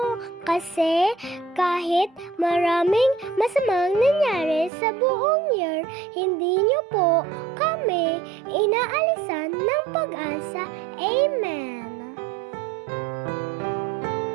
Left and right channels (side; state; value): left; drops out; at 4.7 s